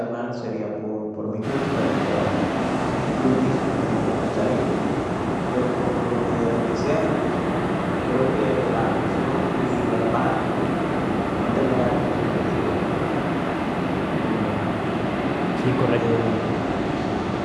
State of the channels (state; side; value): identical; both; correlation 1.00